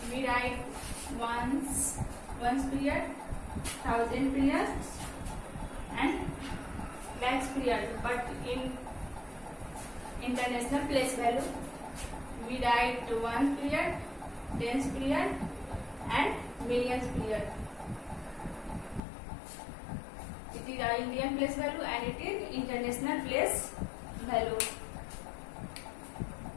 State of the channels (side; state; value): right; drops out; at 19.0 s